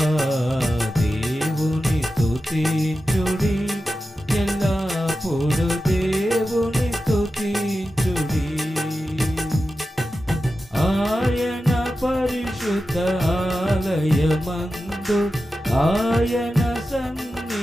దేవుని స్తుతించుడి, ఎల్లప్పుడు దేవుని స్తుతించుడి. ఆయన పరిశుద్ధ ఆలయమందు ఆయన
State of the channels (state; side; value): normal; both; correlation 0.92